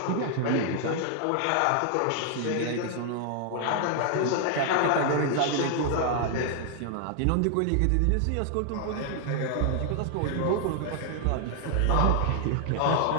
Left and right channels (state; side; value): different; both; correlation 0.00